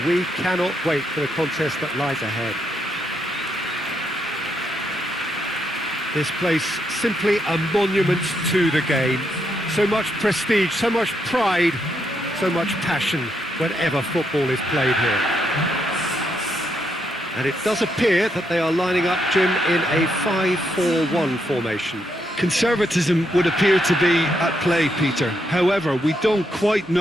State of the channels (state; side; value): normal; both; correlation 0.78